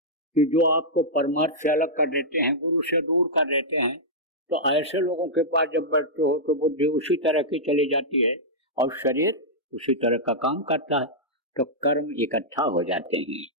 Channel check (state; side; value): normal; both; correlation -0.11